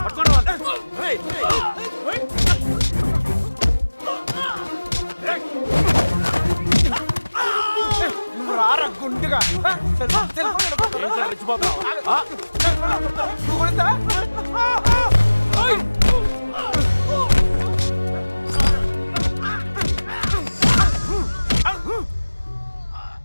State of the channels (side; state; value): both; inverted; correlation -1.00